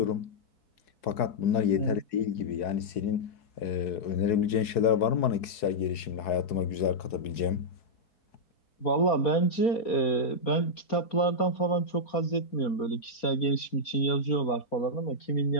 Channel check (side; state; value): right; late; 4.7 ms